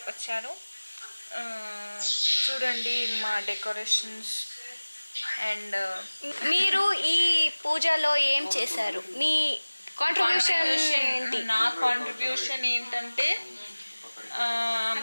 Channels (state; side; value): inverted; both; correlation -1.00